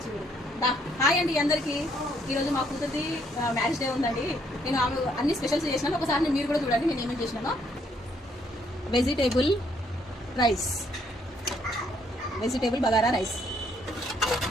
హాయ్ అండి అందరికి. ఈరోజు మా కూతురిది మ్యారేజ్ డే ఉందండి. నేను ఆమె అన్ని స్పెషల్స్ చేసినాను. ఒకసారి మీరు కూడా చూడండి నేను ఏమేమి చేసినాను. Vegetable rice, vegetable bagara rice,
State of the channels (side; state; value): both; normal; correlation 0.69